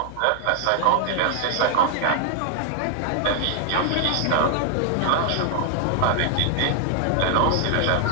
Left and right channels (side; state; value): both; different; correlation 0.00